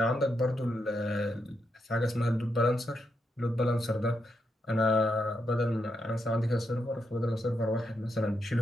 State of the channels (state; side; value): normal; both; correlation 0.82